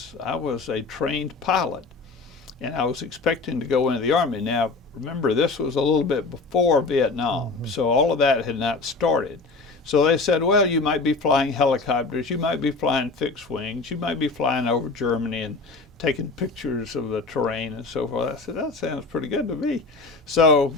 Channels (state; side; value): quieter; right; 3.8 dB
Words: a trained pilot, and I was expecting to go into the Army. Now, remember, this was a little bit before Vietnam, so all of that had not started. So they said, well, you might be flying helicopters, you might be flying fixed wings, you might be flying over Germany and taking pictures of the terrain and so forth. I said, that sounds pretty good to me. So